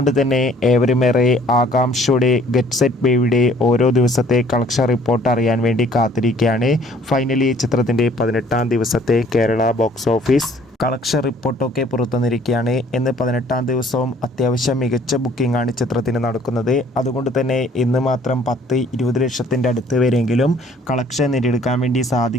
തന്നെ ഏവരുമേറെ ആകാംക്ഷയോടെ ഗെറ്റ് സെറ്റ് ബേബിയുടെ ഓരോ ദിവസത്തെ കളക്ഷൻ റിപ്പോർട്ട് അറിയാൻ വേണ്ടി കാത്തിരിക്കുകയാണ്. ഫൈനലി ചിത്രത്തിൻ്റെ 18-ാം ദിവസത്തെ കേരള ബോക്സ് ഓഫീസ് കളക്ഷൻ റിപ്പോർട്ടൊക്കെ പുറത്തുവന്നിരിക്കുകയാണ്. ഇന്ന് 18-ാം ദിവസവും അത്യാവശ്യം മികച്ച ബുക്കിംഗ് ആണ് ചിത്രത്തിന് നടക്കുന്നത്. അതുകൊണ്ട് തന്നെ ഇന്ന് മാത്രം 10-20 ലക്ഷത്തിൻ്റെ അടുത്ത് വരെയെങ്കിലും കളക്ഷൻ നേടിയെടുക്കാൻ വേണ്ടി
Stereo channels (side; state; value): both; normal; correlation 0.57